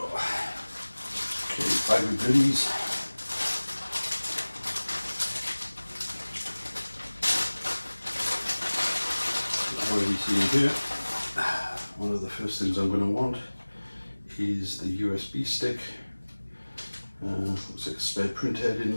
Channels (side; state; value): both; inverted; correlation -1.00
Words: Bag of goodies. I've already seen here. One of the first things I'm going to want is the USB stick. Looks like a spare print head in